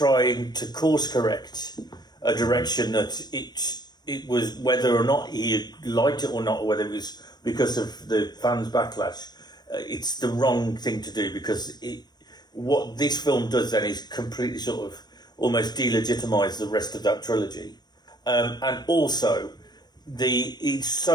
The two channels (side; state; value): right; late; 0.20 ms